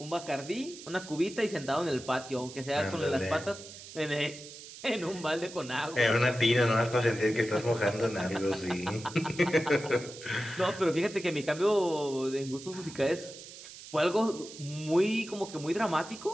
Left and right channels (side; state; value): right; noise; hiss, 15 dB below the sound